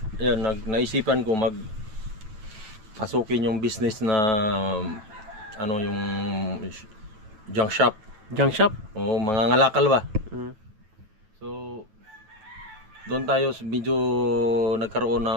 ayun, naisipan ko pasukin yung business na yung junk shop. Junk shop? Oo, mga ngalakal ba? So, doon tayo medyo nagkaroon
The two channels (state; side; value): late; left; 9.2 ms